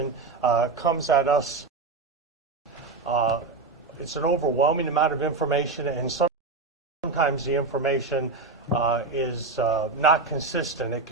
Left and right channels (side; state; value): left; quieter; 4.0 dB